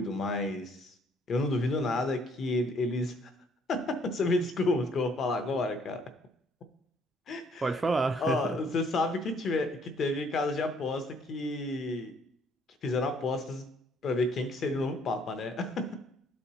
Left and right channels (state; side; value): normal; both; correlation 0.64